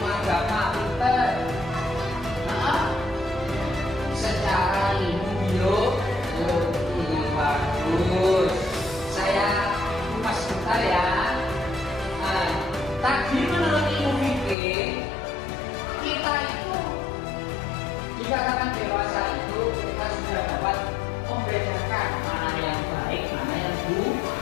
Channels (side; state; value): right; drops out; at 14.6 s